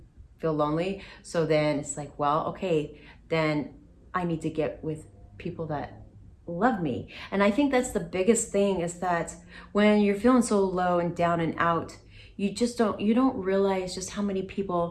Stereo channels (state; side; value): identical; both; correlation 1.00